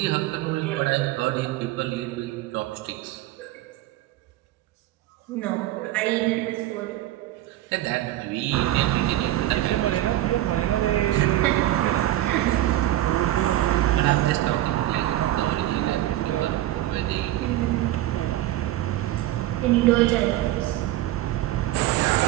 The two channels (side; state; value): left; quieter; 14.8 dB